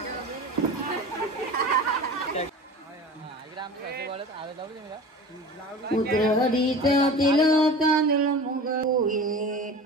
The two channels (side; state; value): both; normal; correlation 0.36